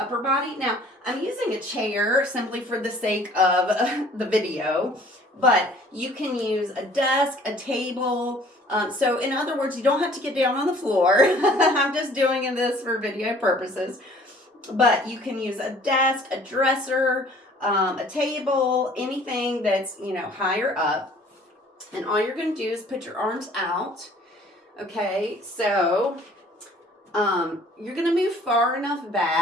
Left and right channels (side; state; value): both; normal; correlation 0.54